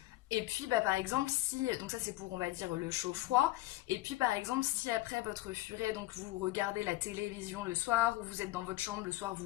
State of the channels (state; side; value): quieter; right; 17.5 dB